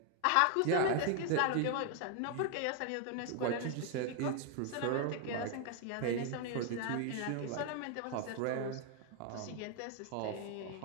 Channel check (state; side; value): different; both; correlation 0.00